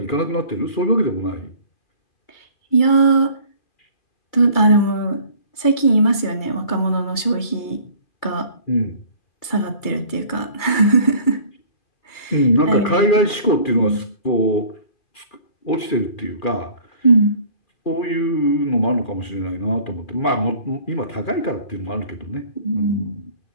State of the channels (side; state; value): right; late; 2.3 ms